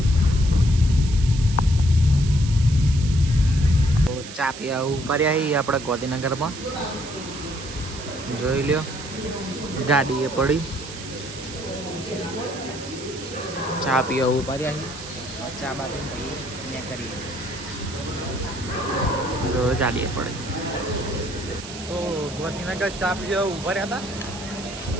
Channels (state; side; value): noise; right; hiss, 13 dB below the sound